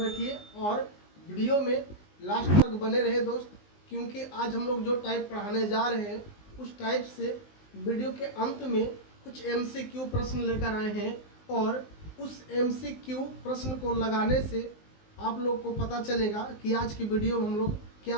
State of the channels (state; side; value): late; right; 19 ms